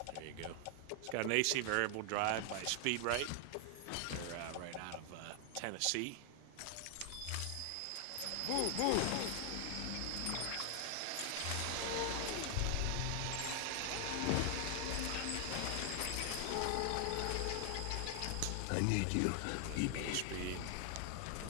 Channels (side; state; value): both; different; correlation 0.00